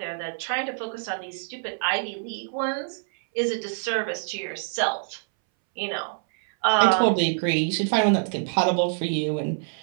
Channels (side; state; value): left; silent; 61 dB below the other